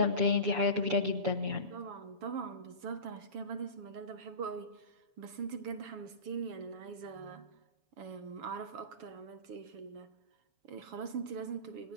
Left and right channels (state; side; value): late; left; 7.1 ms